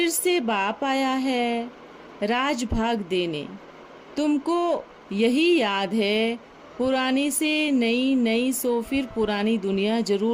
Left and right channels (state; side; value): identical; both; correlation 1.00